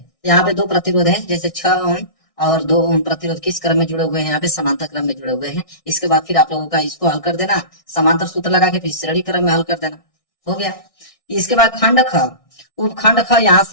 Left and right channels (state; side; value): late; right; 1.6 ms